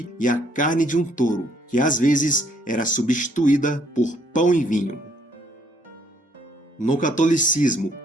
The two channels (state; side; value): normal; both; correlation 0.67